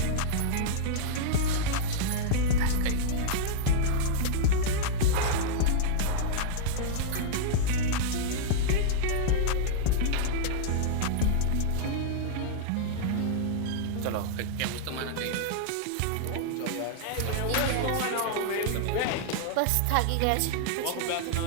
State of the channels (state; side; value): different; both; correlation -0.02